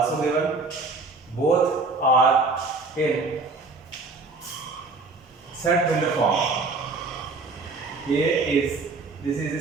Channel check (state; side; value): quieter; left; 3.7 dB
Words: given. Both are in set builder form. This is the